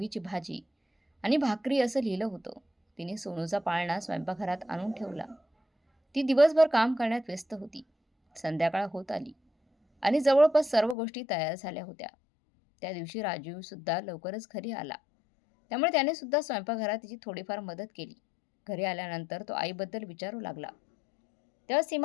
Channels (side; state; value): right; drops out; at 11.0 s